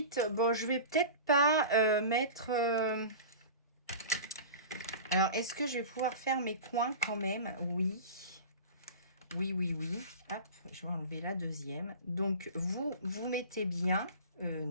bon, je vais peut-être pas mettre... Alors, est-ce que je vais pouvoir faire mes coins quand même? Oui. Oui, oui, oui. Hop, je vais enlever la deuxième. Donc, vous mettez bien...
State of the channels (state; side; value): inverted; both; correlation -0.34